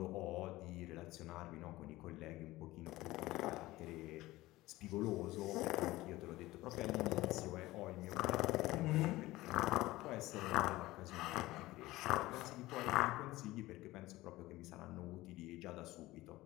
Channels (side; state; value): right; quieter; 18.1 dB